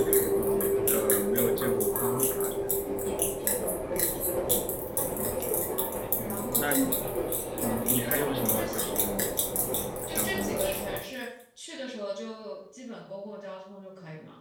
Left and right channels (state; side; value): identical; both; correlation 1.00